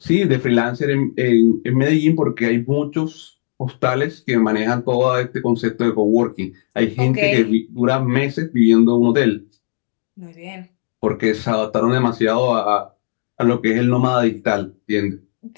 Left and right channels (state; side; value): silent; right; digital silence